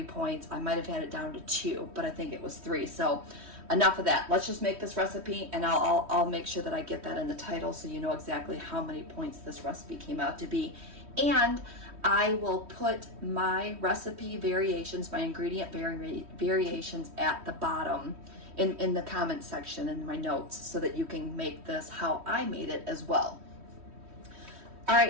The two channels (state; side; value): late; left; 3.1 ms